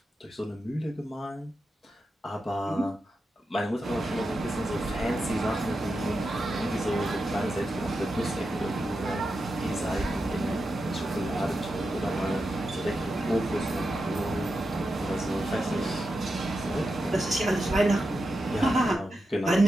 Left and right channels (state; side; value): normal; both; correlation 0.89